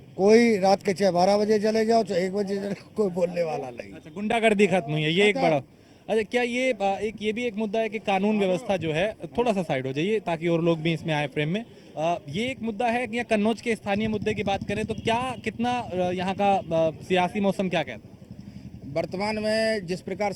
कोई रात के 12 बजे चले जाओ तो 1 बजे चले, कोई बोलने वाला नहीं। अच्छा, गुंडागर्दी खत्म हुई है, ये एक बड़ा। अच्छा, क्या ये भी एक मुद्दा है कि कानून व्यवस्था जो है, थोड़ा सा साइड हो जाइए ताकि और लोग भी इसमें आए फ्रेम में। ये एक मुद्दा है कि कन्नौज के स्थानीय मुद्दे की बात करें तो क्या कितना यहाँ का सियासी मौसम क्या कहता है? वर्तमान में जिस प्रकार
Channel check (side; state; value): both; identical; correlation 1.00